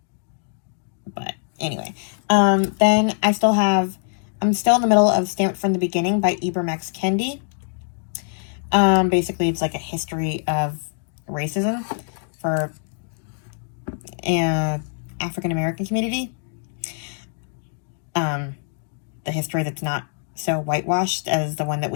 But anyway, then I'm still in the middle of Stamped from the Beginning by Ibram X. Kendi. Basically it's like a history of racism for African American community. The history that's not so whitewashed as the one that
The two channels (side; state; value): right; silent; digital silence